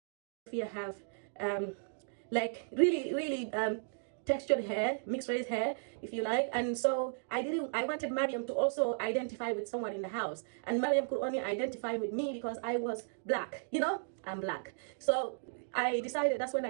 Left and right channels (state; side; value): silent; left; digital silence